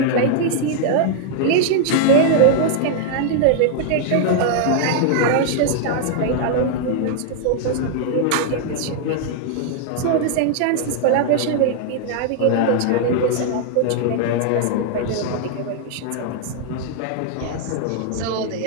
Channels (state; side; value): different; both; correlation 0.00